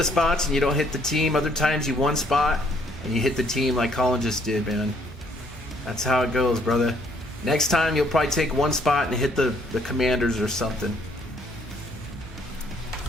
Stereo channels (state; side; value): normal; both; correlation 0.66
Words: spots and you don't hit the team. Other times you 1 spot and you hit the team like Colin just did, man. That's how it goes, brother. Next time you'll probably take 1 spot and hit the Commanders or something.